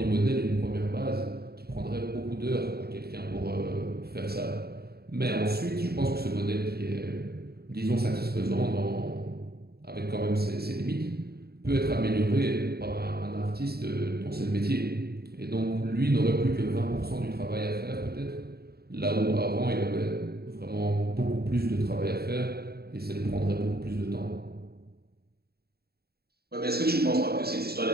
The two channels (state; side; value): late; left; 0.46 ms